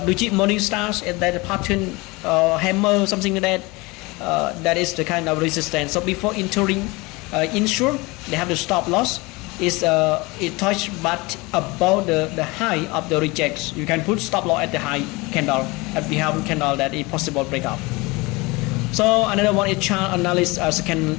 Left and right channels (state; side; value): quieter; right; 24.3 dB